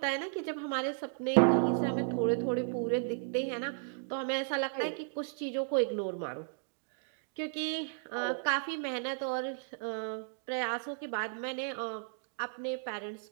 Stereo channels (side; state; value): left; silent; digital silence